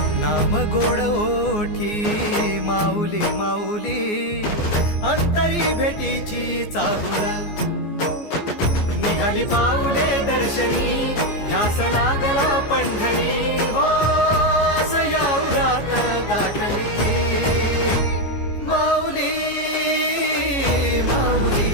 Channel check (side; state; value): right; late; 14 ms